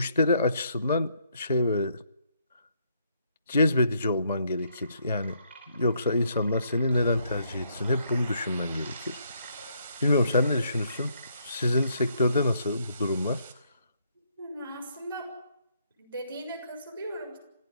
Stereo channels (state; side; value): inverted; both; correlation -0.71